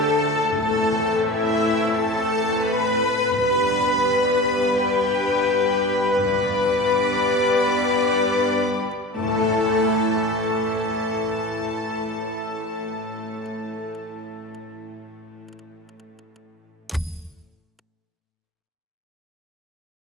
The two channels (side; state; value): both; normal; correlation 0.35